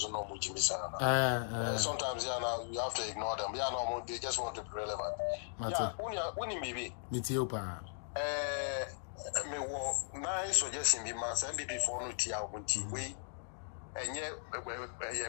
no sometimes you have to ignore them. No, they just want to be relevant. Maybe. Me nice suggestion be man say be for no tia we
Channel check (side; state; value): right; silent; digital silence